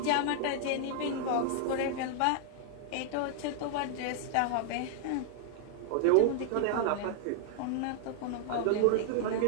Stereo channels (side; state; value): both; different; correlation -0.01